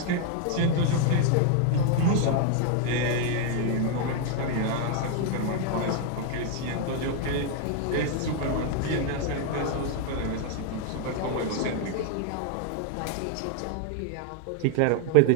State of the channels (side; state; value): both; different; correlation 0.00